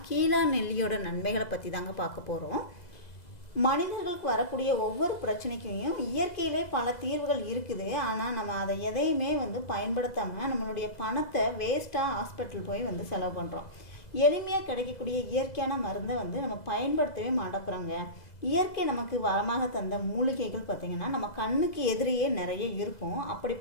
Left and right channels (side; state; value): right; late; 2.0 ms